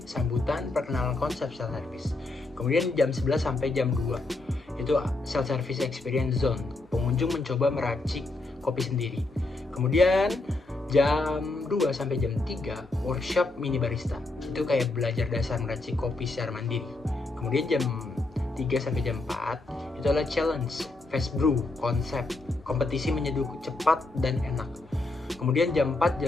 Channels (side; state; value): right; quieter; 3.1 dB